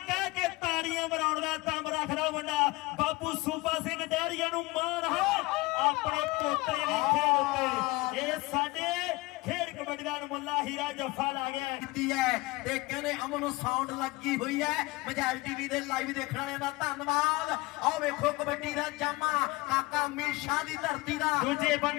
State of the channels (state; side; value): quieter; right; 22.0 dB